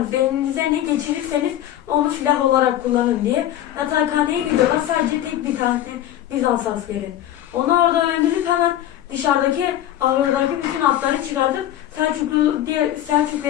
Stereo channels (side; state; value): right; quieter; 12.3 dB